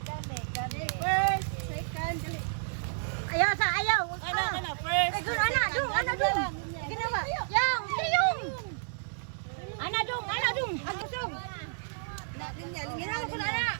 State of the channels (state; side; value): silent; left; digital silence